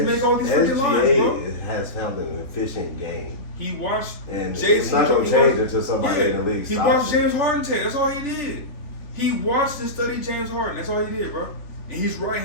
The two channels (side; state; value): right; late; 3.1 ms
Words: make all these freaking lines, bro. has found an efficient game. He watched And JC. it's not going to change until somebody in the league He stops watched it. James Harden take. That's all he did. He watched and studied James Harden. That's all he did, bro. And he's